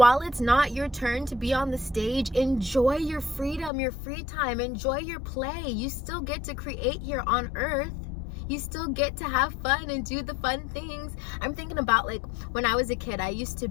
it's not your turn to be on the stage, enjoy your freedom, your free time, enjoy your play. You still get to create here on earth. You still get to have fun and do the fun things. I'm thinking about, like, when I was a kid, I used to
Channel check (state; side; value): drops out; right; at 3.7 s